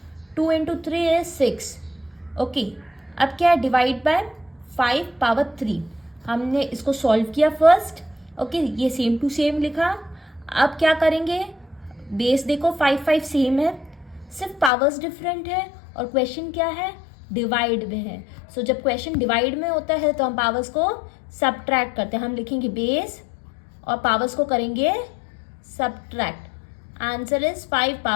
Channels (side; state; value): right; drops out; at 14.7 s